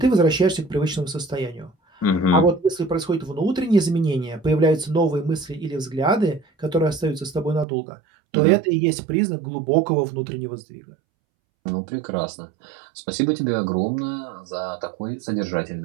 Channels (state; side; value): drops out; left; at 7.7 s